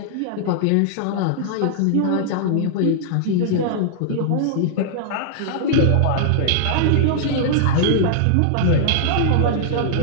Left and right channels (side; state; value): both; different; correlation -0.01